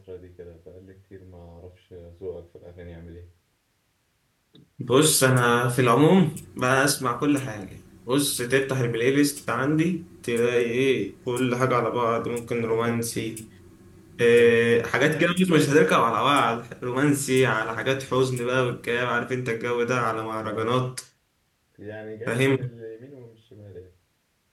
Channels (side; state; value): both; identical; correlation 1.00